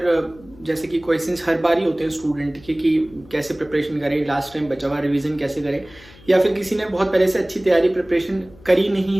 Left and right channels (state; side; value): noise; left; hum, 23 dB below the sound